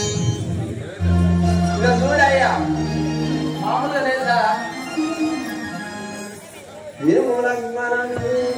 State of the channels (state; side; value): identical; both; correlation 1.00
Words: ఇక చూడయ్యా మామూలుగా లేదా